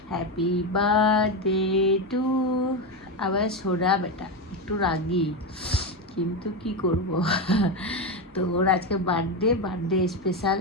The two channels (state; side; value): normal; both; correlation 0.12